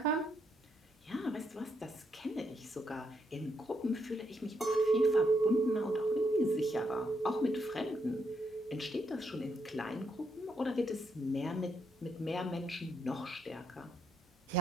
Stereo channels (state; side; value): normal; both; correlation 0.77